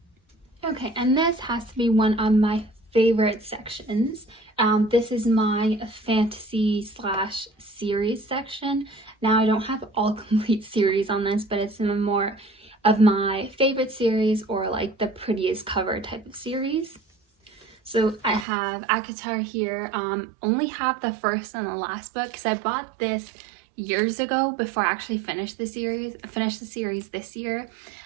Okay, and this has to be one of my favorite sections. This is my fantasy / series section. Now I don't have all complete series on this, but it's some more of my favorite series, or like the prettiest cover type of series. So I have ACOTAR here. Only have the first and the last book, because I bought this years ago before I actually finished the series. I finished the series this year,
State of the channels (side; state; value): left; drops out; at 18.4 s